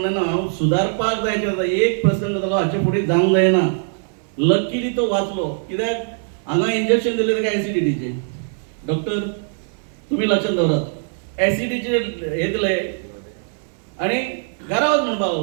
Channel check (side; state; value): left; silent; 59 dB below the other